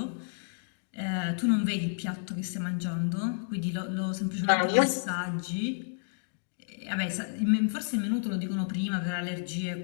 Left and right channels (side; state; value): right; silent; digital silence